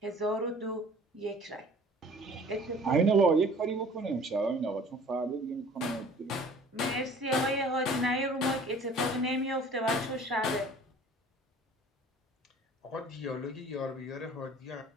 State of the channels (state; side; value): normal; both; correlation 0.49